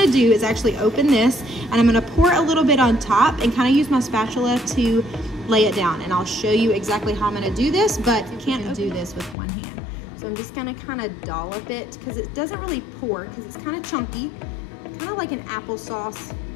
to do is actually open this, and I'm going to pour a little bit on top and kind of use my spatula to lay it down, and I'll show you exactly how I'm going to do this, but you can't do this with one hand. So I'm just going to kind of dollop it because it doesn't really pour because it's kind of chunky, kind of like an applesauce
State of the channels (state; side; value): drops out; right; at 9.3 s